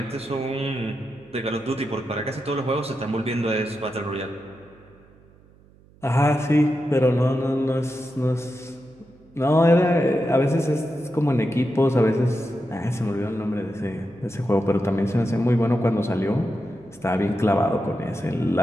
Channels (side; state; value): right; noise; hum, 27 dB below the sound